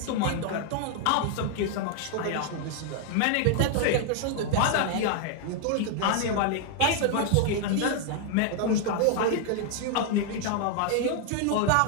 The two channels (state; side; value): different; both; correlation 0.00